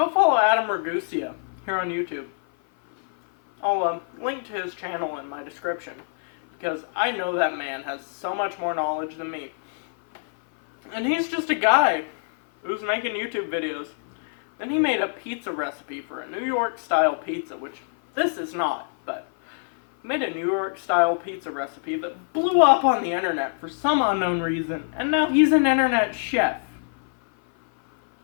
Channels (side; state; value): right; silent; 56 dB below the other